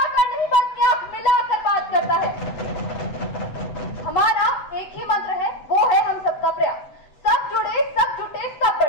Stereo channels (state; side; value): late; right; 7.9 ms